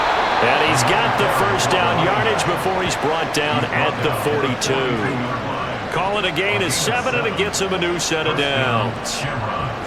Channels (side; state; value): both; identical; correlation 1.00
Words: And he's got the 1st down yardage before he's brought down at the 42. Call it a gain of 7, and it gets him a new set of downs.